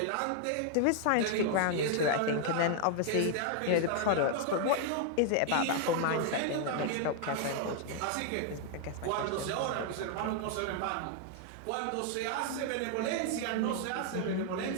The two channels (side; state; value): both; different; correlation 0.00